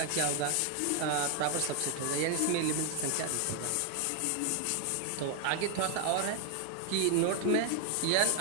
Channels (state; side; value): different; both; correlation 0.00